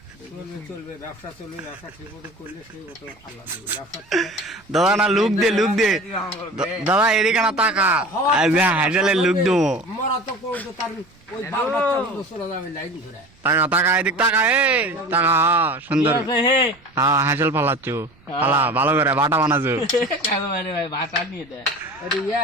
চলবে ব্যবসা চলবে ব্যবসা ঠিক মতো করলে সেই মতো আল্লাহ দেবে ব্যবসা দাদা না লুক দে দাদা এদিকে না তাকা হাইজালে লুক দেবো মরা তো করতো তার ওই বাল বাচ্চা চলে যাবে লাইন ঘুরে টাকা এদিক টাকা টাকা সুন্দর হ্যাঁ হাঁসেল ফালাচ্ছু ফালা ভালো করে বাটা বানাচ্ছু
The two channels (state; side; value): noise; right; rumble, 30 dB below the sound